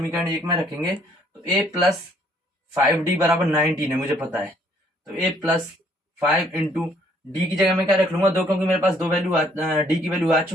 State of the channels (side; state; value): both; normal; correlation 0.64